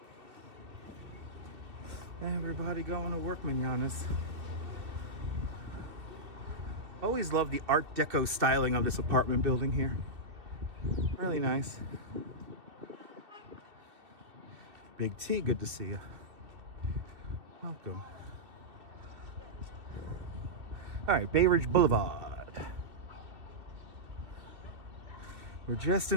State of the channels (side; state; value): left; late; 2.7 ms